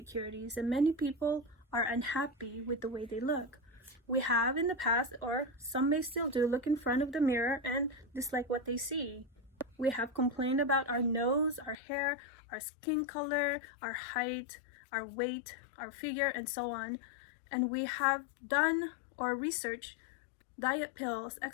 and many people are unhappy with the way they look. We have in the past, or some may still do, look in front of the mirror and dislike what they see. We have complained about our nose, our hair, our skin color, our height, our weight, our figure, and so on. And we have done or researched diet pills,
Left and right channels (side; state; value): right; drops out; at 11.8 s